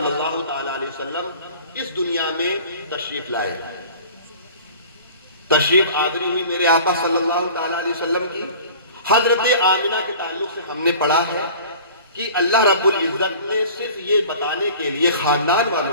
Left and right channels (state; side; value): inverted; both; correlation -0.44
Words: اللہ تعالی علیہ وسلم اس دنیا میں تشریف لائے. تشریف آوری ہوئی میرے آقا صلی اللہ تعالی علیہ وسلم کی. حضرت آمنہ کے تعلق سے ہم نے پڑھا ہے کہ اللہ رب العزت نے صرف یہ بتانے کے لیے خاندان